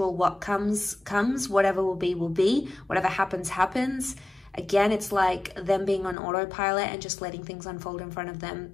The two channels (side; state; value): right; drops out; at 6.2 s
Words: What comes, comes. Whatever will be, will be. Whatever happens, happens. Again, it's like them being on autopilot and just letting things unfold in front of